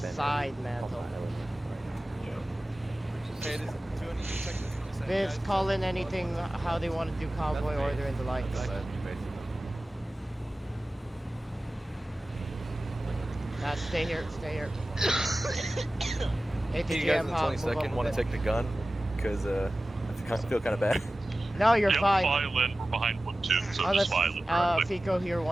Mantle. Okay, doing 2 seconds. Viz, call in anything, how they want to do convoy order in the lights. Stay here. Hey, you guys in ATGM, the Hog, 20 second want to take the gun? Because I feel kind of bad. No, you're Yep, fine. file in. We're behind 1-2, so Unless, just file in directly. Fico here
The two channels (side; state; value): both; normal; correlation 0.96